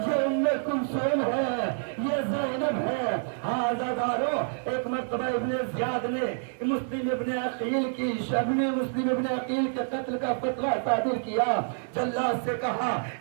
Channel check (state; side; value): silent; left; digital silence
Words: ام کلثوم ہے، یہ زینب ہے۔ ہاں عزادارو، ایک مرتبہ ابن زیاد نے مسلم ابن عقیل کی مسلم ابن عقیل کے قتل کا فتویٰ صادر کیا، جلاد سے کہا